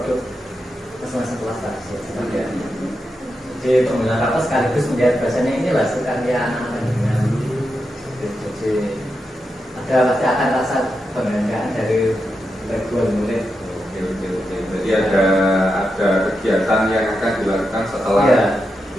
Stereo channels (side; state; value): both; normal; correlation 0.87